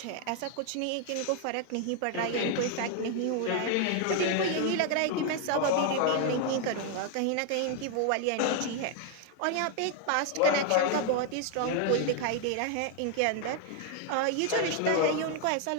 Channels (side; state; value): both; different; correlation 0.00